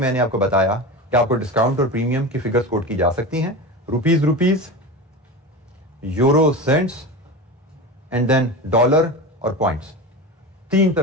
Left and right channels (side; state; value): both; normal; correlation 0.27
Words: आपको बताया कि आपको डिस्काउंट और प्रीमियम की फिगर्स कोट की जा सकती हैं। Rupees, euro cents and then dollar और पॉइंट्स। 3